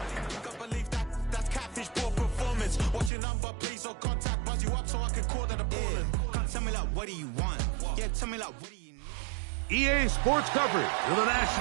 That's catfish, poor performance. Watch your number, please, or contact. Buzz you up so I can call that a ballin'. Can't tell me like, what do you want? Yeah, tell me like, what do you need? EA Sports coverage of the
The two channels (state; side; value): drops out; left; at 3.1 s